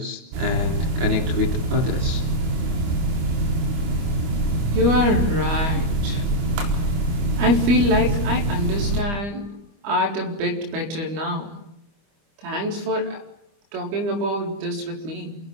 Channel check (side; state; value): left; late; 25 ms